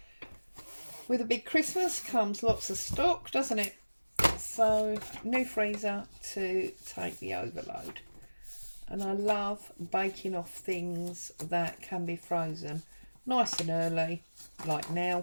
with a big Christmas comes lots of stock, doesn't it? So new freezer to take the overload. And I love baking off things that can be frozen. nice and early, like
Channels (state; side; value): inverted; both; correlation -1.00